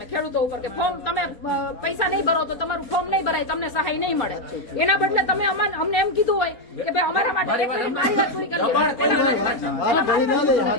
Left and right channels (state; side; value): late; right; 4.3 ms